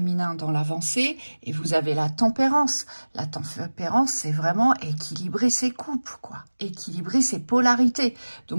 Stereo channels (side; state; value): both; inverted; correlation -1.00